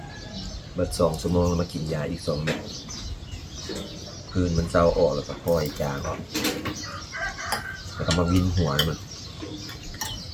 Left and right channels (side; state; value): both; identical; correlation 1.00